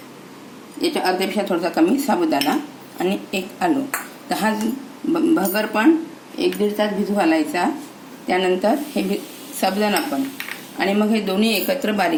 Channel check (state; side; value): identical; both; correlation 1.00